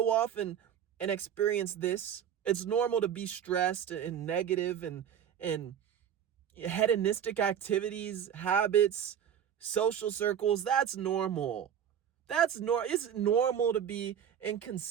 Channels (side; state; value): left; quieter; 9.0 dB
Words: off and experience this. It's normal to be stressed and negative and hedonistic activities, habits, social circles. That's normal. It's normal to be